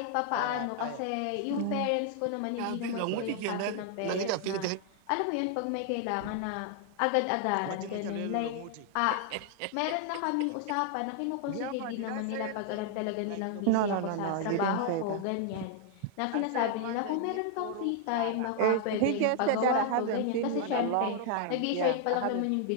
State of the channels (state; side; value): different; both; correlation 0.00